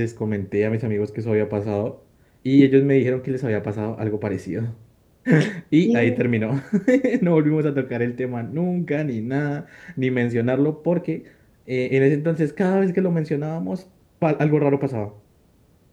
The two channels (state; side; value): identical; both; correlation 1.00